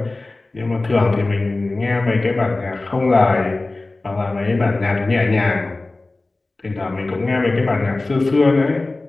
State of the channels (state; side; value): quieter; right; 3.1 dB